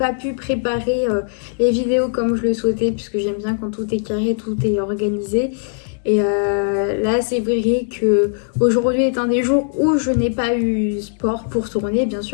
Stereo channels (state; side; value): silent; right; 66 dB below the other